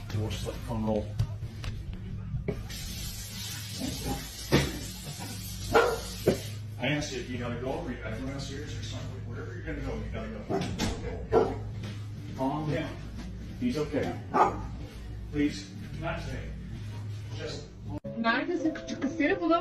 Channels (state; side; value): identical; both; correlation 1.00